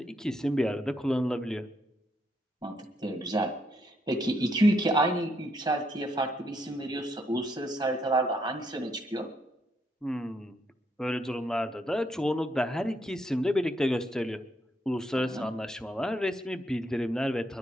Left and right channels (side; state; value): both; normal; correlation 0.75